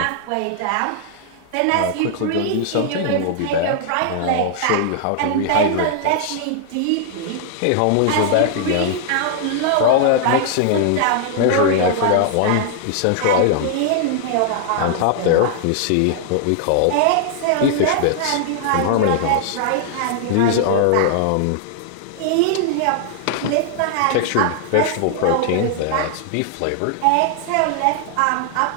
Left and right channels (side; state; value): both; different; correlation -0.01